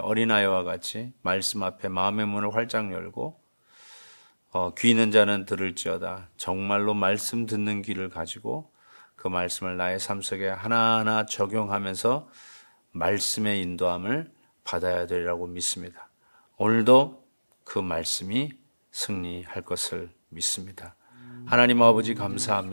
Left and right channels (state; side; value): inverted; both; correlation -1.00